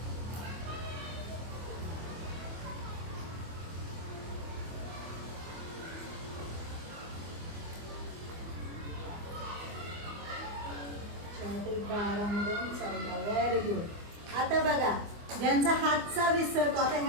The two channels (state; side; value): late; left; 24 ms